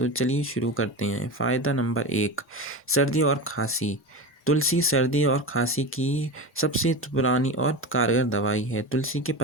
चलिए शुरू करते हैं। फ़ायदा नंबर 1, सर्दी और खांसी। तुलसी सर्दी और खांसी की सबसे पुरानी और कारगर दवाई है। तुलसी के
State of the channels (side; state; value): both; normal; correlation 0.24